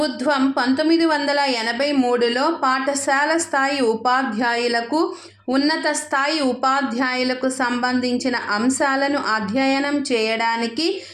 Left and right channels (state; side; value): identical; both; correlation 1.00